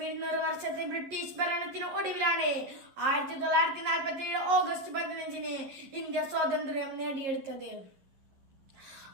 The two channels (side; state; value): left; late; 11 ms